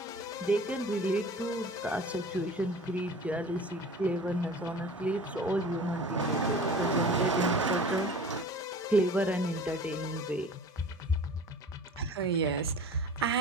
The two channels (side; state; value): both; normal; correlation 0.41